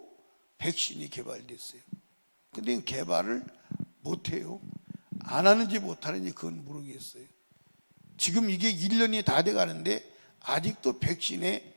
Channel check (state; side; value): inverted; both; correlation -1.00